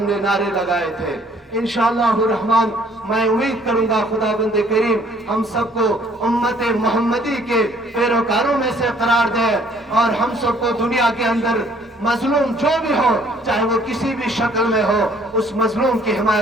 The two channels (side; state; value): both; normal; correlation 0.60